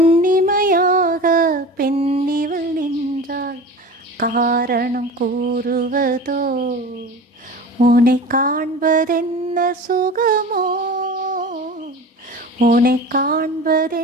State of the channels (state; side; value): normal; both; correlation 0.34